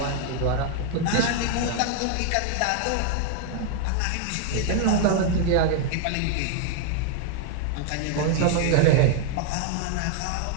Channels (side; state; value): both; different; correlation 0.00